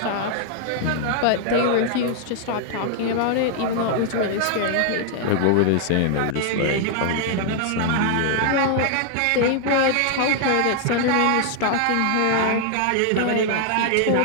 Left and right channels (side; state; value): both; different; correlation 0.00